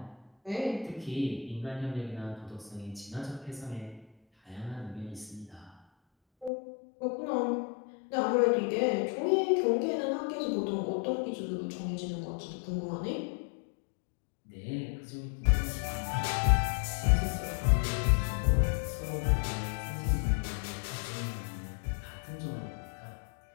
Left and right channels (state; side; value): drops out; right; at 6.5 s